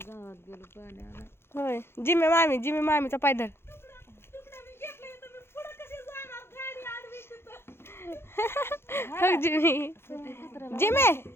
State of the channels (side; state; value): right; late; 0.12 ms